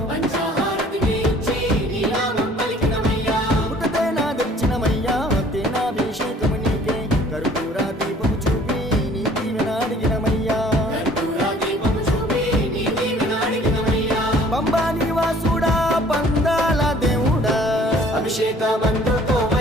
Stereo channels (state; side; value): normal; both; correlation 0.54